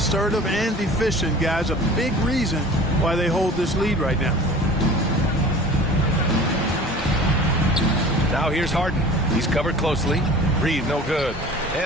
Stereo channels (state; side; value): normal; both; correlation 0.42